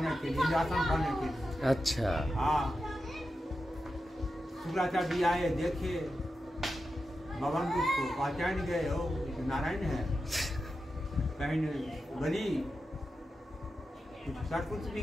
के लिए, इंद्रासन पाने के लिए। अच्छा। हाँ, शुक्राचार्य जी आए, देखे भगवान को पहचान गए, हो नारायण है। कहीं बलि कुछ सब कुछ भी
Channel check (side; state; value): both; normal; correlation 0.90